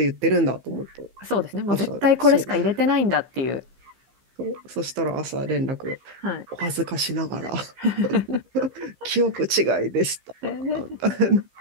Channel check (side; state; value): left; late; 15 ms